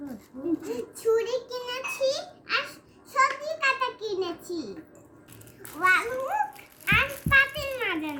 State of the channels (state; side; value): identical; both; correlation 1.00